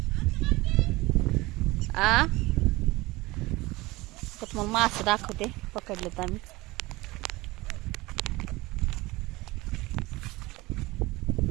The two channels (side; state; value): left; quieter; 21.0 dB